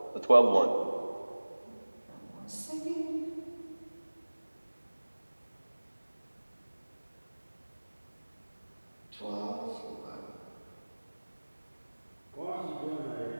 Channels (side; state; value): both; inverted; correlation -1.00